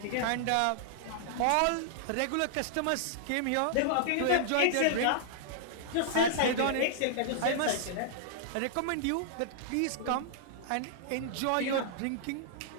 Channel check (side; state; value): both; different; correlation -0.01